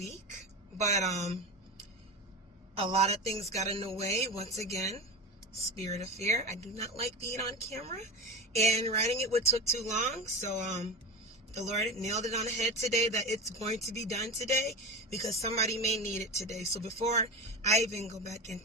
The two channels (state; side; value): normal; both; correlation 0.24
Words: but a lot of things got in the way. Once again, spirit of fear. I do not like being on camera, and writing it took too long, so the Lord nailed it on the head today that it's going to be done today because somebody may need it today. So before I even go back